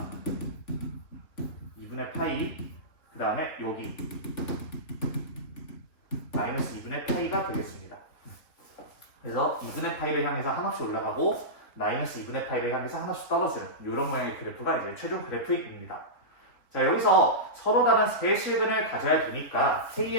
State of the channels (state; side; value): late; right; 3.8 ms